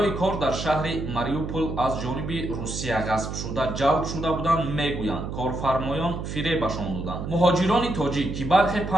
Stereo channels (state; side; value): noise; right; hum, 6 dB below the sound